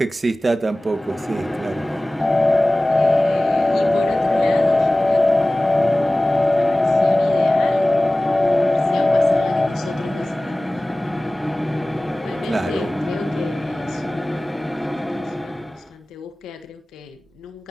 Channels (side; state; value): both; normal; correlation 0.98